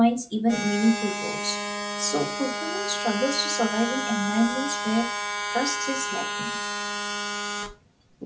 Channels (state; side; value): identical; both; correlation 1.00